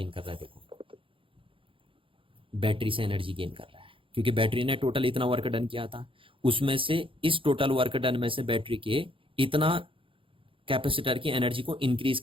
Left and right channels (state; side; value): late; left; 0.25 ms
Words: कर रहा है, देखो बैटरी से एनर्जी गेन कर रहा है, क्योंकि बैटरी ने टोटल इतना वर्क डन किया था, उसमें से इस टोटल वर्क डन में से बैटरी के इतना कैपेसिटर की एनर्जी को इंक्रीज